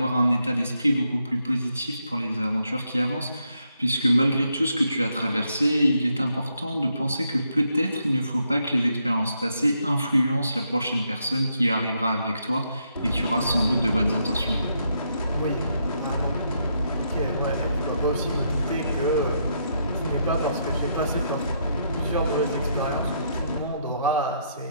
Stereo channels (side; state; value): both; inverted; correlation -0.77